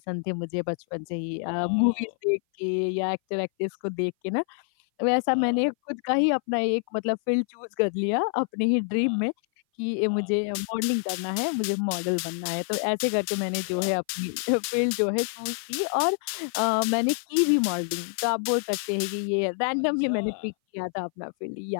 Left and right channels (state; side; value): silent; right; 57 dB below the other